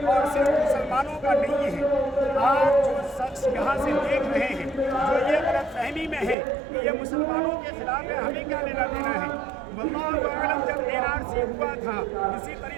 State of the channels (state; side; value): drops out; left; at 6.4 s